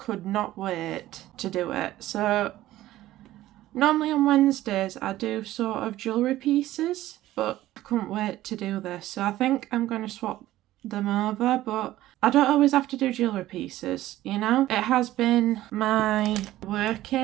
not wait to do it. So normally on Wednesdays I do sort of jewellery pieces, but I couldn't wait to do this, so I think I'm going to swap them over. But I don't always have to do jewellery pieces, you know. It has been my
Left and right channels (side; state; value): left; quieter; 15.1 dB